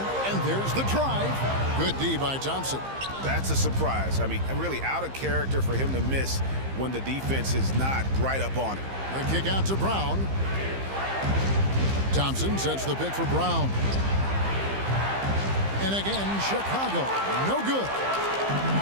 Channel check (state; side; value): late; left; 15 ms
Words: and there's the drive. Good D by Thompson. That's a surprise. I mean, really out of character for him to miss when the defense is not right up on it. The kick out to Brown. Thompson sets the pick for Brown. And again, Chicago, no good.